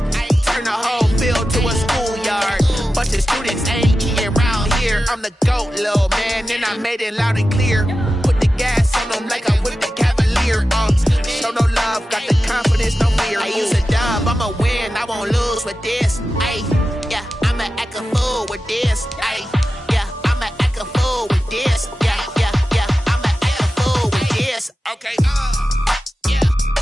Turn the whole field to a schoolyard. Bunch of students ain't eating around here. I'm the GOAT, little man, and I made it loud and clear. Put the gas on them like I whipped the Cavalier. Show no love, got the confidence, no fear. I use a dub, I'ma win, I won't lose with this. Yeah, I'ma act a fool with this. Yeah, I'ma act a fool with this. Yeah, I'ma act a fool with this. Okay, yeah,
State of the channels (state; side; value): normal; both; correlation 0.93